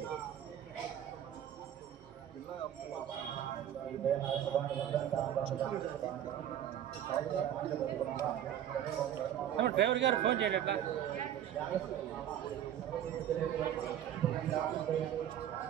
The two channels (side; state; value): left; quieter; 10.6 dB